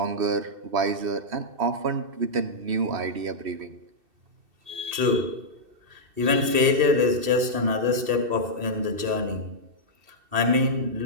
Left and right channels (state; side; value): late; left; 2.7 ms